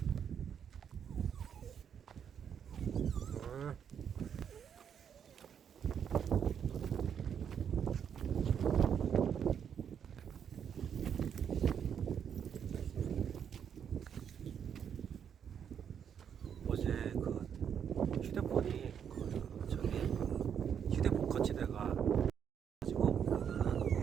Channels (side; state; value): left; quieter; 8.1 dB